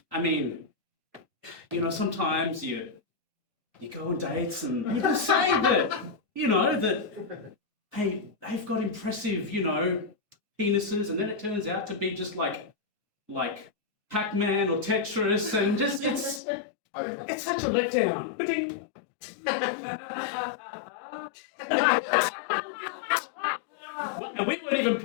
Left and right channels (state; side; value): drops out; right; at 16.4 s